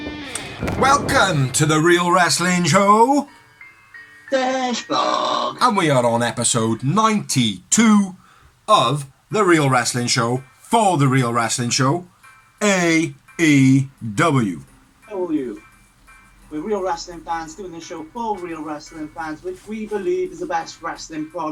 Welcome to the Real Wrestling Show. Dashboard. And we are on episode 92 of the Real Wrestling Show for the Real Wrestling Show, AEW. How are you? We're real wrestling fans doing this show for real wrestling fans, which we believe is the best wrestling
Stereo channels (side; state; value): both; identical; correlation 1.00